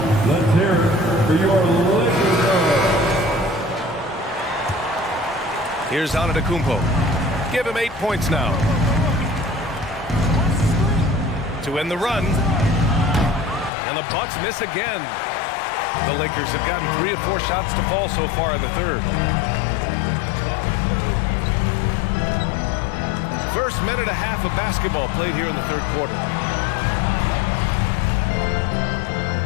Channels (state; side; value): drops out; right; at 13.7 s